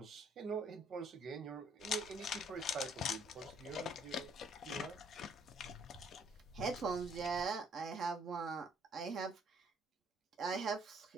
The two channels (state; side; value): normal; both; correlation 0.63